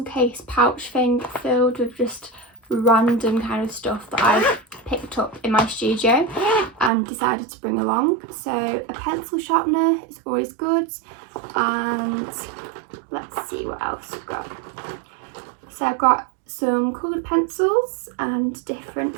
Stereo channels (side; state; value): left; drops out; at 6.9 s